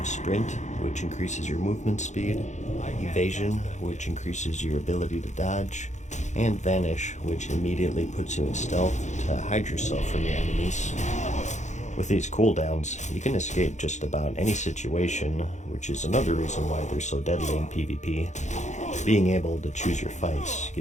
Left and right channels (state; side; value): late; right; 0.34 ms